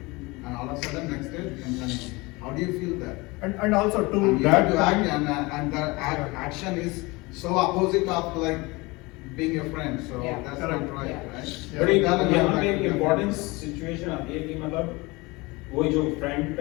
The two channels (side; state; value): right; quieter; 24.0 dB